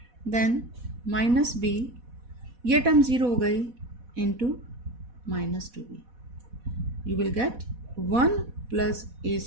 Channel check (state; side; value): late; left; 4.1 ms